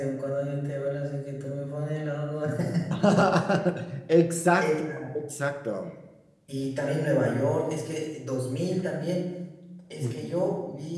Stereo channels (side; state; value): both; identical; correlation 1.00